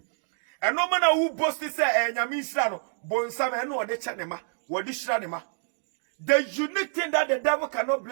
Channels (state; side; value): silent; left; digital silence